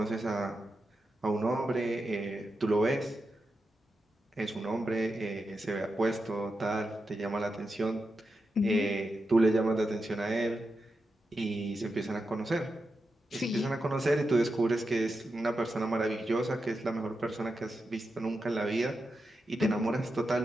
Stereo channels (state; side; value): normal; both; correlation 0.88